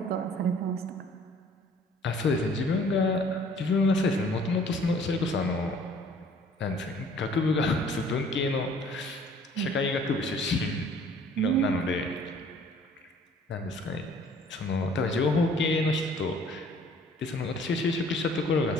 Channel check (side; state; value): both; normal; correlation 0.55